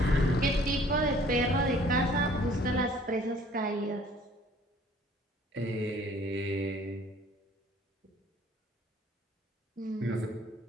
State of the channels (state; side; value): normal; both; correlation 0.55